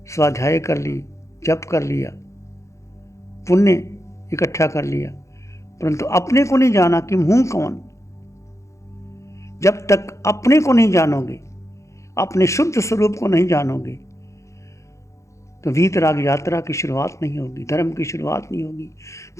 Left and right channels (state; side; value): late; right; 0.14 ms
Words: स्वाध्याय कर ली, जप कर लिया, पुण्य इकट्ठा कर लिया, परंतु अपने को नहीं जाना कि हूं कौन। जब तक अपने को नहीं जानोगे, अपने शुद्ध स्वरूप को नहीं जानोगे, तो वीतराग यात्रा की शुरुआत नहीं होगी, धर्म की शुरुआत नहीं होगी।